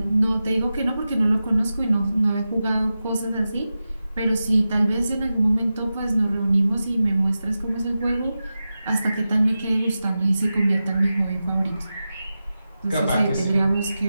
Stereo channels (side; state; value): both; inverted; correlation -0.93